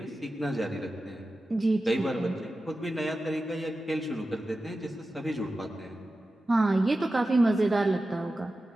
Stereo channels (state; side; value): normal; both; correlation 0.93